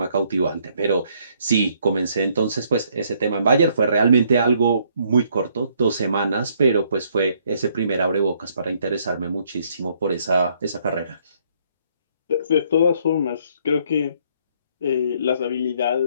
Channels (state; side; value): inverted; both; correlation -0.67